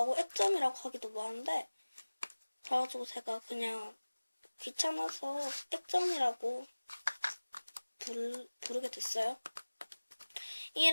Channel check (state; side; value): inverted; both; correlation -1.00